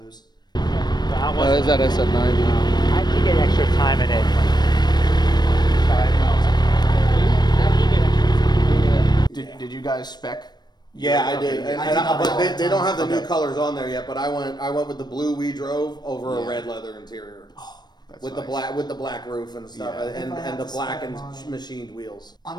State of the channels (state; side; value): late; right; 0.20 ms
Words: Is that SF90? I have to get extra time in it. Did you guys spec? Yeah, I did. But they don't have the new colors on there yet. But I went with the blue we drove over a red leather interior. With nice. the black roof and stuff, and the black and machined wheels.